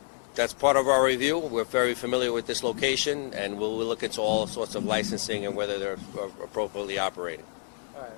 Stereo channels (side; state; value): right; silent; 59 dB below the other